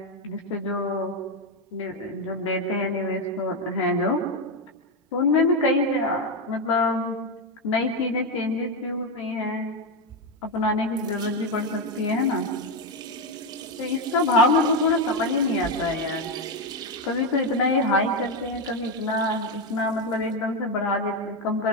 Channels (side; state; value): both; normal; correlation 0.08